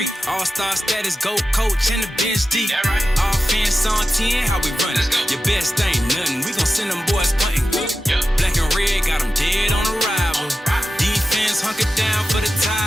All-star status, go coach and the bench deep. Right. Offense on 10, how we run it? Your best ain't nothing, we gon' send them boys punting. Yep. Black and red, got them dead on arrival. Defense hunker down for the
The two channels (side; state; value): both; normal; correlation 0.93